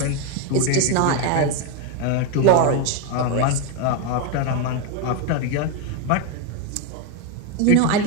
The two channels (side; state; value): both; different; correlation 0.02